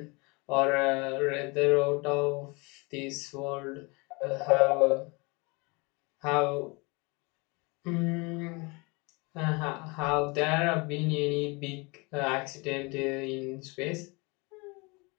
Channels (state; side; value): quieter; right; 28.0 dB